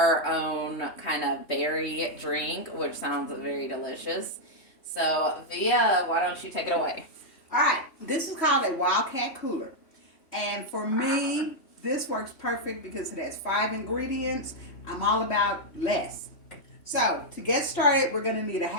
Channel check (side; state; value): right; late; 3.1 ms